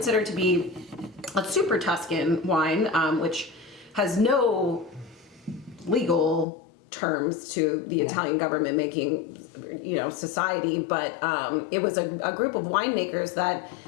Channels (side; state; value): right; drops out; at 6.5 s